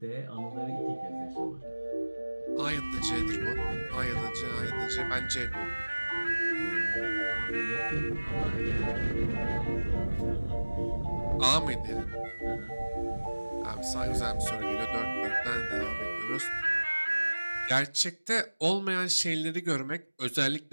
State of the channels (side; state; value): both; inverted; correlation -1.00